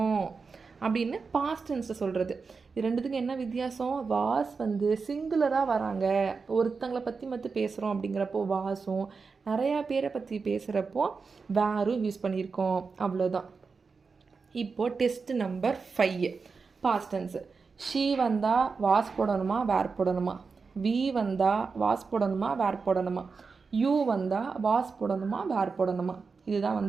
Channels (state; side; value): quieter; left; 4.8 dB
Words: அப்படின்னு பாஸ்ட் டென்ஸில் சொல்கிறது. இது ரெண்டுத்துக்கும் என்ன வித்தியாசம்? வாஸ் வந்து சிங்குலராக வராங்க, ஒருத்தங்களை பற்றி பேசுகிறோம் அப்படிங்கிறப்போ வாஸும், நிறையா பேரை பற்றி பேசுகிறப்போ வேரும் யூஸ் பண்ணியிருக்கோம், அவ்வளோதான். இப்போது test number 5 past tense. She வந்தால் வாஸ் போடணுமா, வேர் போடணுமா? வி வந்தால் வாஸ் போடணுமா, வேர் போடணுமா? யூ வந்தால் வாஸ் போடணுமா, வேர் போடணுமா? இதுதான்